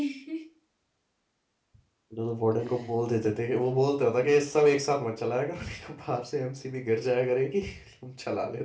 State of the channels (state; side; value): identical; both; correlation 1.00